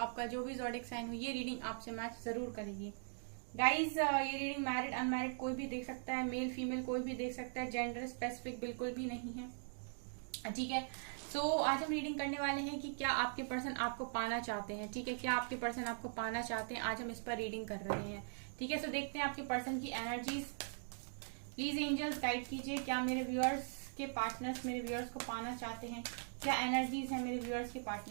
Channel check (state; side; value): silent; left; digital silence